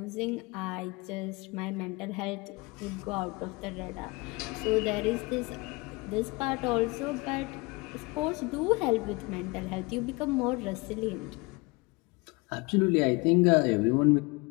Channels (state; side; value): quieter; right; 26.2 dB